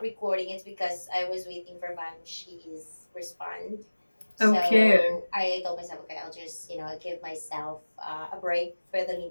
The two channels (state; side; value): inverted; both; correlation -1.00